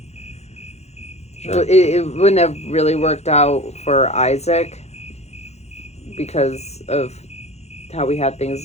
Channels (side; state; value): right; late; 0.31 ms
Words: Sure. It wouldn't have really worked out for Isaac because of how we had